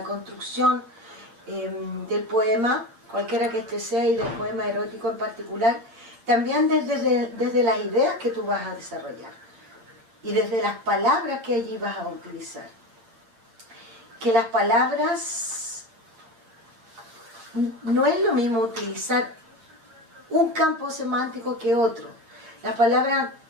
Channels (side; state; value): left; late; 8.7 ms